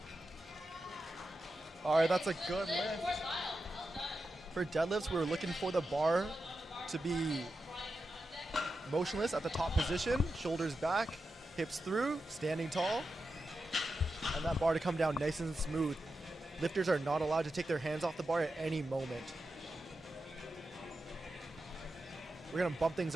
All right, that's a good lift. For deadlifts, we're looking for the bar to be motionless at the top position, shoulders back, hips through, standing tall, and that bar to come down nice and smooth. Lifters are not allowed to take their hands off the bar at any moment. We're gonna bump things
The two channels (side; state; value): both; normal; correlation 0.89